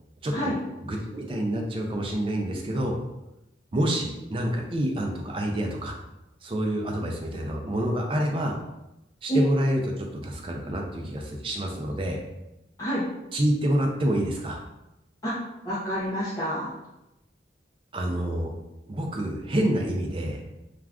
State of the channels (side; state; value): both; normal; correlation 0.77